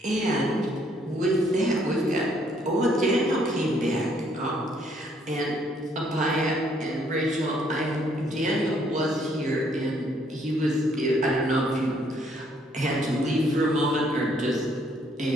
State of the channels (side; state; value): both; normal; correlation 0.67